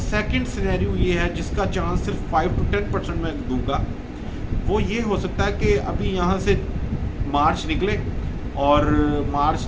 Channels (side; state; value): both; identical; correlation 1.00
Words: سینیریو یہ ہے جس کا چانس صرف 5 to 10% میں دوں گا۔ وہ یہ ہو سکتا ہے کہ ابھی یہاں سے مارچ نکلے، اور مارچ